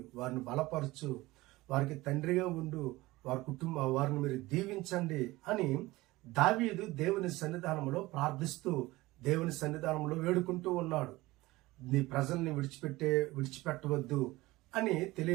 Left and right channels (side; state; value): left; quieter; 19.5 dB